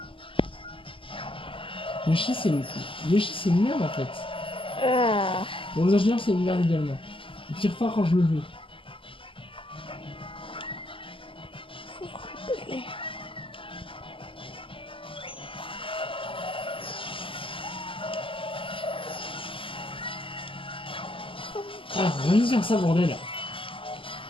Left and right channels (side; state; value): right; late; 0.25 ms